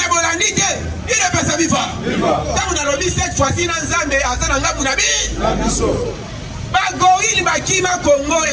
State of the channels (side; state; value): both; identical; correlation 1.00